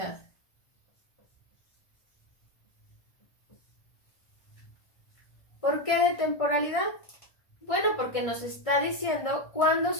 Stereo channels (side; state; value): right; late; 1.6 ms